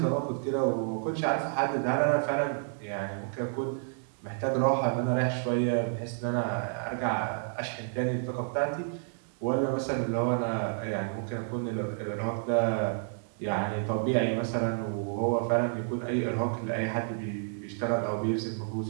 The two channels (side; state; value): left; silent; 58 dB below the other